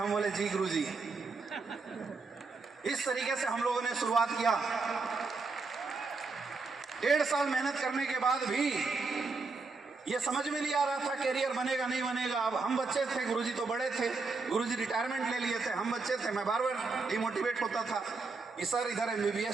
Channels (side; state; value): left; quieter; 4.1 dB